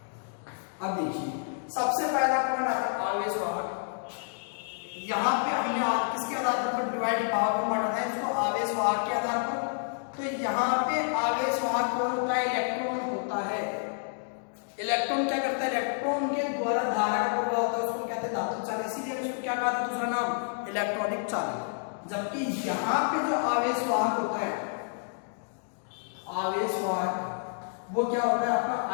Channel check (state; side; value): silent; right; 58 dB below the other